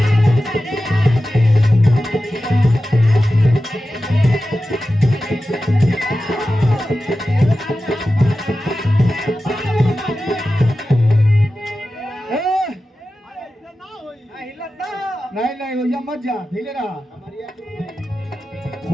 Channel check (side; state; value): both; normal; correlation 0.93